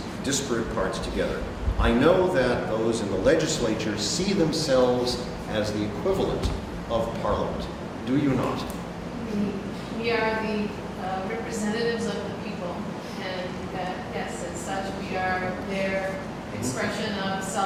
disparate parts together. I know that those in the legislature see themselves as the equivalent of Parliament. Do you not? We are the representatives of the people, and yes, as such, we are their expression of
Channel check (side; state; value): both; identical; correlation 1.00